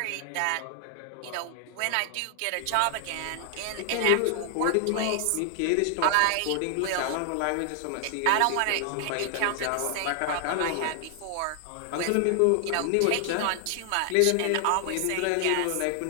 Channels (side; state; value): both; different; correlation 0.00